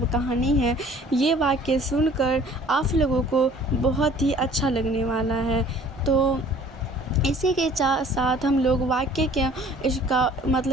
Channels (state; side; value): normal; both; correlation 0.51